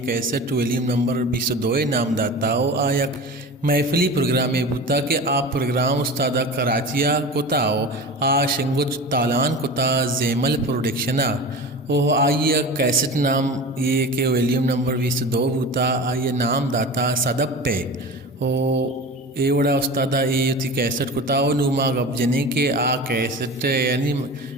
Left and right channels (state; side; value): normal; both; correlation 0.32